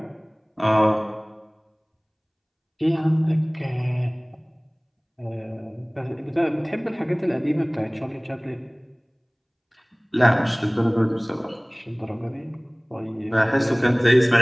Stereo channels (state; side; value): identical; both; correlation 1.00